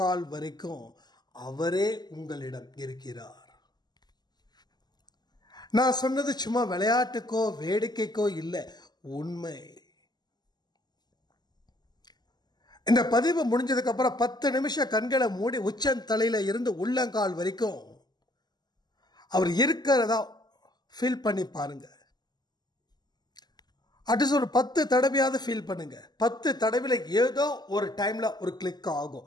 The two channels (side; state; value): right; late; 0.20 ms